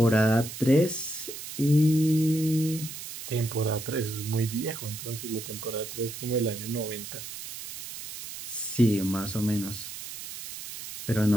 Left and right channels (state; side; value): noise; right; hiss, 10 dB below the sound